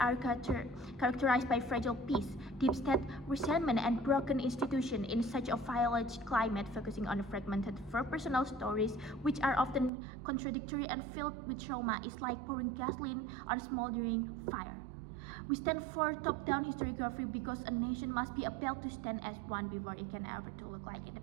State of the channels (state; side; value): drops out; left; at 9.9 s